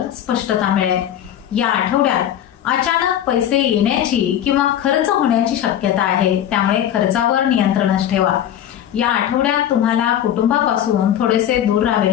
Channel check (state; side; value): quieter; right; 10.8 dB